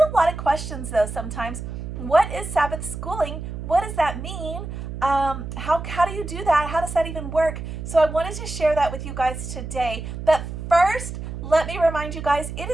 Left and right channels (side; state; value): right; noise; hum, 7 dB below the sound